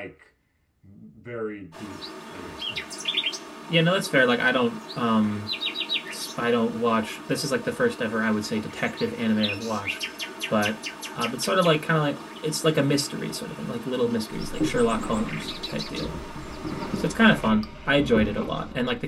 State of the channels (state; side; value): identical; both; correlation 1.00